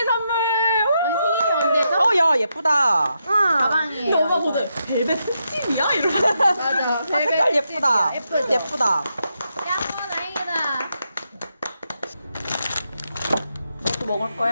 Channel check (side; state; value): both; inverted; correlation -0.83